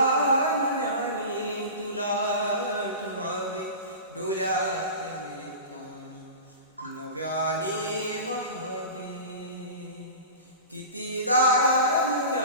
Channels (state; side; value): inverted; both; correlation -0.32